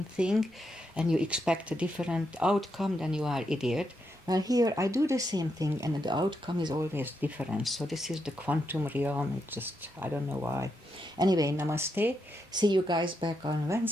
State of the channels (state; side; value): normal; both; correlation 0.82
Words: thing and you expect a different outcome, then you are idiot. Well, here I do the same thing and the outcome is always different. So this is the quantum realm. It's just, I don't know why. Anyway, namaste. See you guys back on